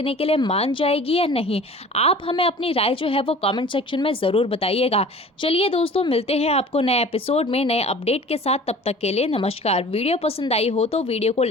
के लिए मान जाएगी या नहीं? आप हमें अपनी राय जो है वो कमेंट सेक्शन में ज़रूर बताइएगा। चलिए दोस्तों, मिलते हैं आपको नए एपिसोड में नए अपडेट के साथ। तब तक के लिए नमस्कार। वीडियो पसंद आई हो तो वीडियो को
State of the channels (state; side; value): normal; both; correlation 0.44